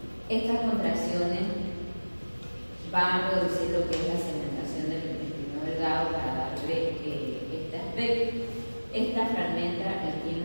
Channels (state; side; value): inverted; both; correlation -1.00